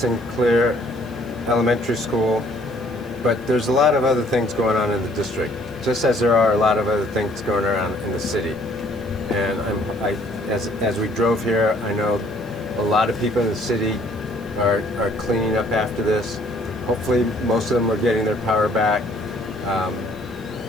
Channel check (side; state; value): right; noise; hiss, 26 dB below the sound